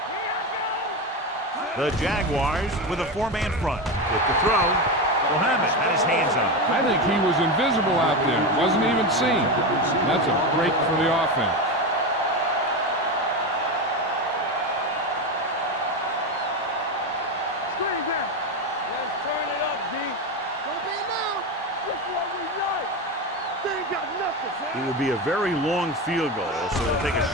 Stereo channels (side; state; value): both; normal; correlation 0.17